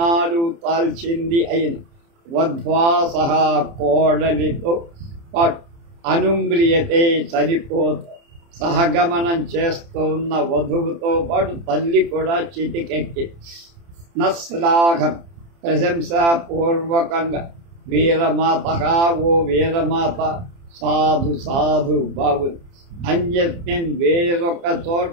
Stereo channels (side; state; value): left; late; 30 ms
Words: తాల్చింది అయిన వధ్వా సహా కోడలితో పాటు అనుమ్రియతే చనిపోత సహగమనం చేస్తున్న వధువుతో పాటు తల్లి కూడా చితికెక్కి నశ్లాఘం ప్రశంసాపూర్వకంగా వీరమాత ఓ వీరమాత సాధు సాధు బాగుంది. అన్యస్మిన్ వేరొక చోట